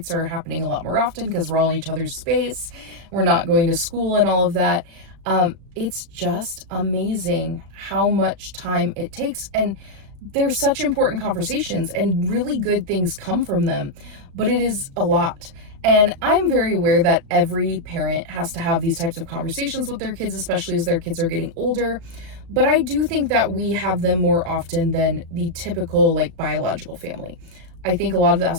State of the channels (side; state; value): left; late; 36 ms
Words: are happening a lot more often because we're all in each other's space. We're not going to school and all of that. It's just amazing how much time it takes. And they're such important conversations and really good things come from them, but it is a lot. And I'm very aware that every parent has to have these types of conversations with their kids, especially as their kids are getting older. But I do think that we have them more often than the typical like biological family. I think a lot of that